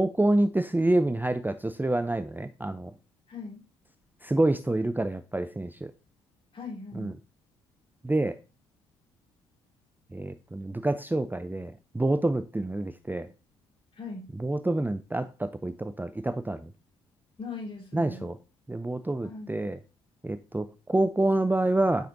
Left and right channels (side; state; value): both; normal; correlation 0.96